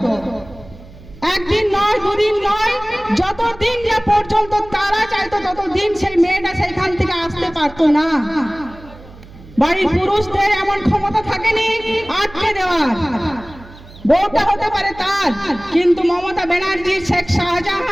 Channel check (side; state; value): right; noise; hum, 20 dB below the sound